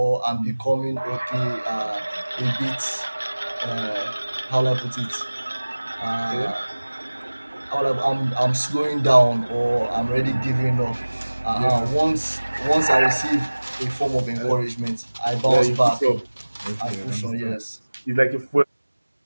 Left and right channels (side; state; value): both; inverted; correlation -1.00